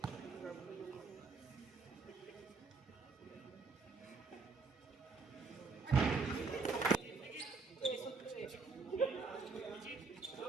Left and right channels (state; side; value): quieter; left; 4.3 dB